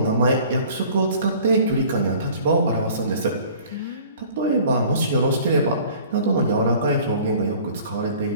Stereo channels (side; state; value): both; inverted; correlation -0.49